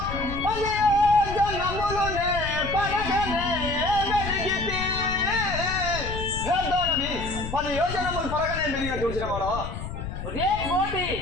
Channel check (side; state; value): left; noise; rumble, 7 dB below the sound